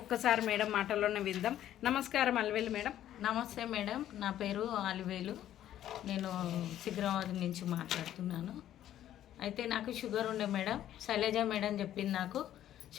ఒక్కసారి మేడం మాటల్లోనే విందాం. నమస్కారం అల్వేలు మేడం. నమస్తే మేడం, నా పేరు అలివేలు. నేను సికింద్రాబాద్ నుంచి మాట్లాడుతున్నాను. అయితే నాకు షుగర్ ఉండే మేడం, శైలజ మేడం చెప్పింది నాకు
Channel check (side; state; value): right; quieter; 11.9 dB